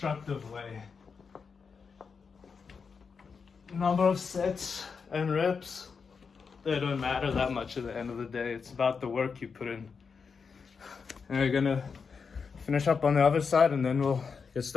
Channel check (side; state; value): right; quieter; 5.6 dB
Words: way. Number of sets and reps, they don't matter that much at the end of the day. It's about the work you put in. And we're gonna finish up on the other side and then we'll get